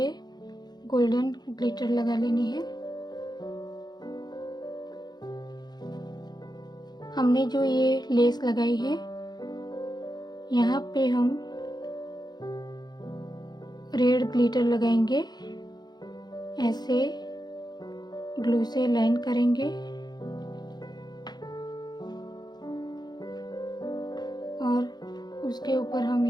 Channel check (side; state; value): right; late; 0.20 ms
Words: गोल्डन ग्लिटर लगा लेनी है। हमने जो ये लेस लगाई है यहाँ पे हम रेड ग्लिटर लगाएंगे, ऐसे ग्लू से लाइन करेंगे और उसके ऊपर हम